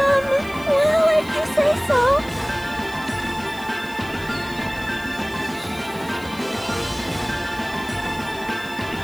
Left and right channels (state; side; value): noise; right; hiss, 21 dB below the sound